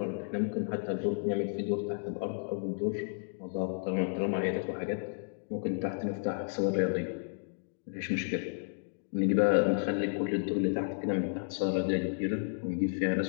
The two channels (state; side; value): silent; right; digital silence